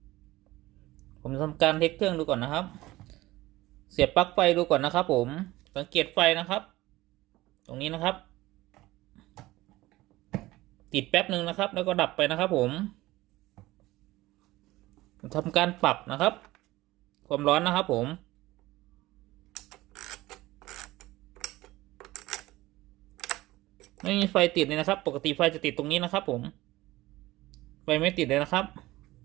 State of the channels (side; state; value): left; quieter; 18.1 dB